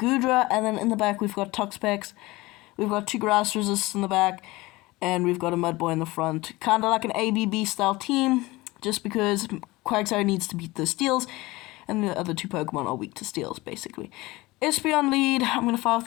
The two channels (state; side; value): quieter; right; 20.8 dB